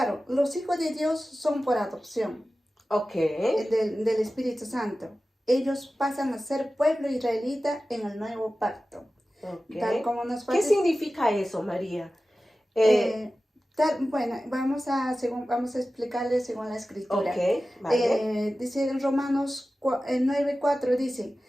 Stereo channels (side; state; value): both; normal; correlation 0.95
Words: los hijos de Dios son por adopción Ok, del Espíritu Santo. Ellos pasan a ser pueblo israelita en el nuevo pacto. Tal ok. como nos ¿Qué parece. significa eso, María? Bueno, vamos a explicarle según la escritura. Ok, vale. Dice en Romanos 9:4, dice,